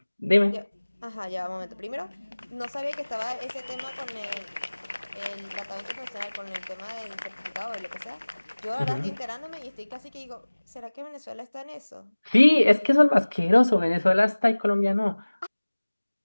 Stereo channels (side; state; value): both; inverted; correlation -1.00